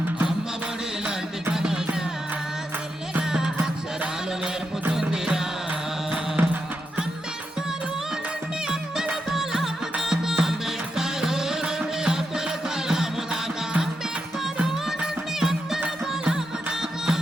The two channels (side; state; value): both; normal; correlation 0.85